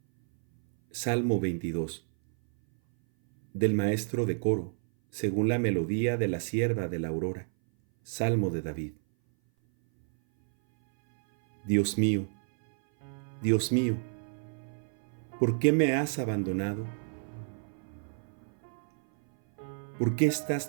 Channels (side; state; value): left; silent; 57 dB below the other